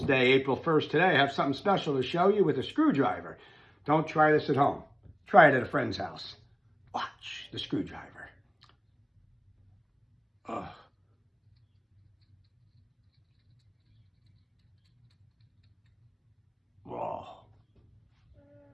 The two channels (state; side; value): identical; both; correlation 1.00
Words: Day, April 1st today. I have something special to show you with a screwdriver. Don't try this at home. Try it at a friend's house. Watch the screwdriver. Oh. Whoa.